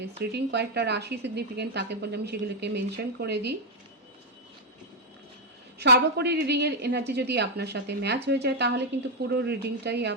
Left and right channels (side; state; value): both; normal; correlation 0.01